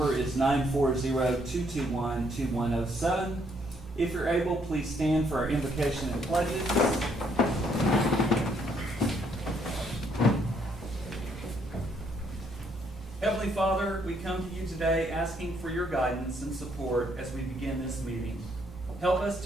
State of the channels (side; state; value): both; normal; correlation 0.70